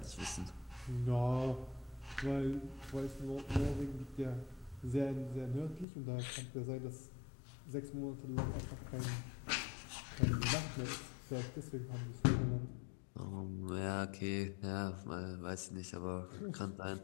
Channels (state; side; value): drops out; right; at 5.9 s